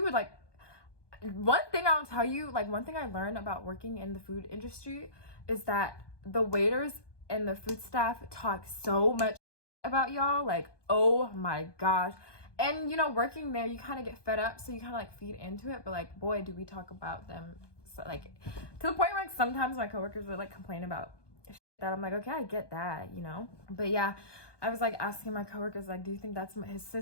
would like, one thing I'll tell you, like one thing I learned about working in the food industry is that the waiters and the food staff talk so much about y'all, like, oh my gosh. And you know, working there, you kind of get fed up, so you kind of like feed into it. But like, boy, do we talk about them, so, like, to the point where like sometimes my coworkers would like complain about that. I'm like, okay, I get that, you know. But yeah, I was like asking my coworkers, like, do you think that's his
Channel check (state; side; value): late; right; 1.2 ms